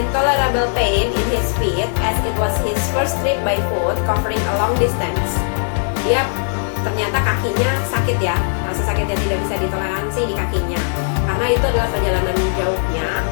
pain in his feet as it was his first trip by foot covering a long distance. Dia ternyata kakinya sakit ya, rasa sakit yang tidak bisa ditoleransi di kakinya. Karena itu adalah perjalanan jauhnya,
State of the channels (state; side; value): silent; right; digital silence